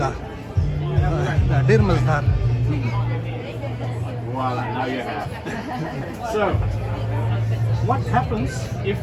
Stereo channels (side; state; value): both; identical; correlation 1.00